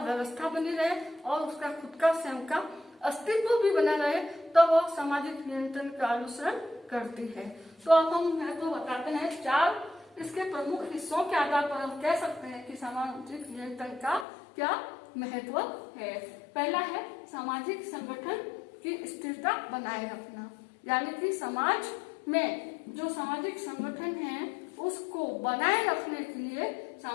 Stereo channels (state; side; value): drops out; right; at 14.2 s